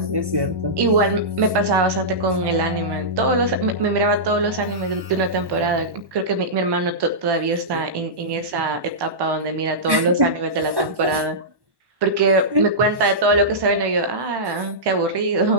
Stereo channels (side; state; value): left; late; 1.1 ms